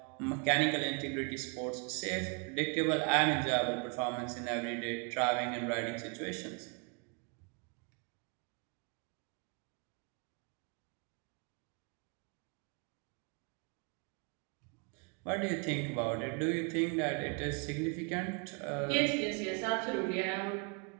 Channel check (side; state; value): left; quieter; 34.8 dB